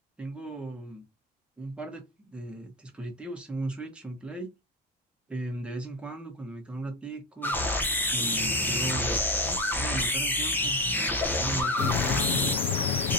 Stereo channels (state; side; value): normal; both; correlation 0.15